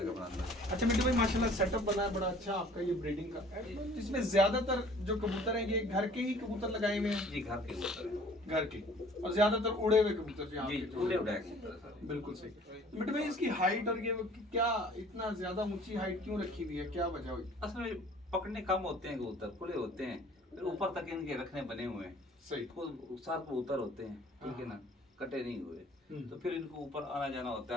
अच्छा मिट्टू भाई, माशाल्लाह सेटअप बना है बड़ा अच्छा आपका ये ब्रीडिंग का। इसमें ज़्यादातर जो कबूतर हैं ये घर के ही कबूतर लगाए हुए हैं? जी, घर के कबूतर हैं। घर के, और ज़्यादातर उड़े हुए कबूतर भी जी, उड़े उड़ाए कबूतर सर। बिल्कुल सही। तो मिट्टू भाई, इसकी हाइट और ये क्या इतना ज़्यादा ऊंची हाइट क्यों रखी हुई है, क्या वजह हुई? असल में पकड़ने कम होते हैं कबूतर, खुले होते हैं, फिर ऊपर तक इनके रखने बने हुए हैं। सही। खुद सात कबूतर होते हैं, ठीक है ना, कटे नहीं हुए, तो फिर इनको ऊपर आना जाना होता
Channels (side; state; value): both; normal; correlation 0.52